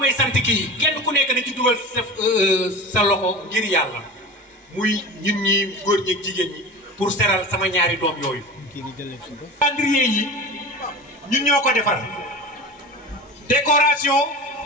sant kii kenn ku nekk na ci dugal sa loxo ngir yàlla muy ñun ñi góor ñi ak jigéen ñi pour seral sama ñaari doom yooyu. calendrier yi ñun ñoo ko defar décoration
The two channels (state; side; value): normal; both; correlation 0.32